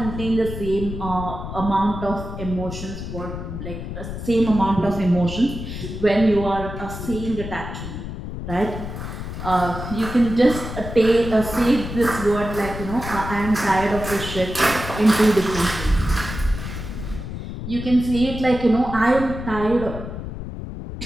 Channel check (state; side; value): noise; left; rumble, 8 dB below the sound